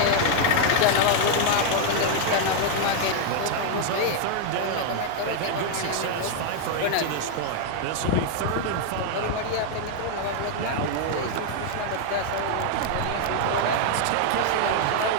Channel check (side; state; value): both; different; correlation 0.00